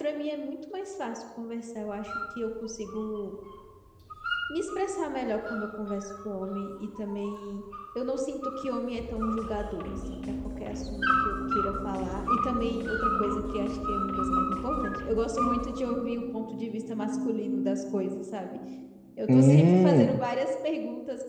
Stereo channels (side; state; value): both; identical; correlation 1.00